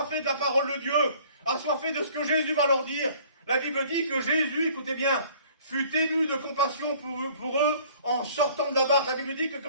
de la parole de Dieu, assoiffés de ce que Jésus va leur dire, la Bible dit que Jésus, écoutez bien, fut ému de compassion pour eux en sortant de la barque. La Bible dit que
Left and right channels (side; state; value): both; inverted; correlation -0.54